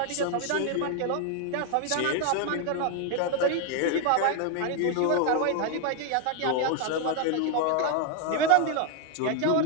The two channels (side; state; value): both; different; correlation 0.01